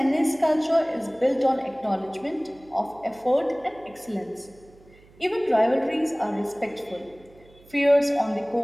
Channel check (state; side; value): noise; right; hum, 26 dB below the sound